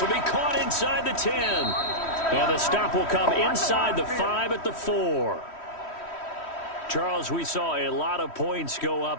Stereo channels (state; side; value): late; right; 3.1 ms